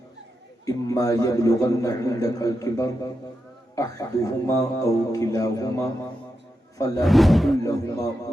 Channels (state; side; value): normal; both; correlation 0.87